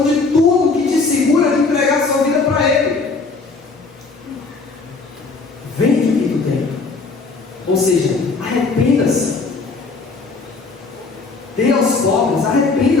de tudo que te segura de entregar sua vida para Ele. Vende o que tu tem. Ou seja, arrependa-se. Dê aos pobres,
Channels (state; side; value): quieter; right; 4.1 dB